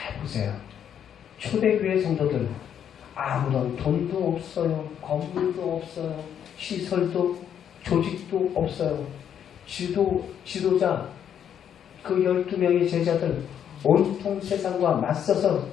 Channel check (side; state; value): right; quieter; 9.0 dB